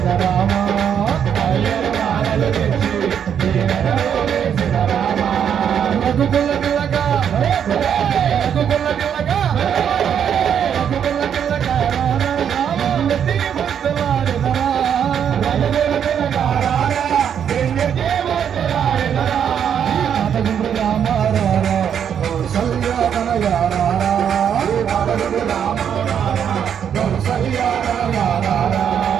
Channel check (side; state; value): left; quieter; 8.4 dB